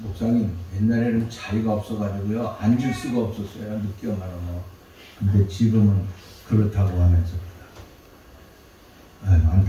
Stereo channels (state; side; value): identical; both; correlation 1.00